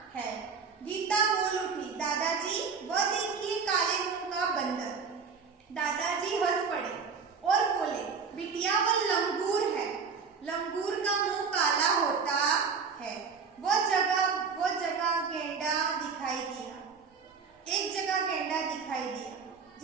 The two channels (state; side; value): quieter; left; 5.6 dB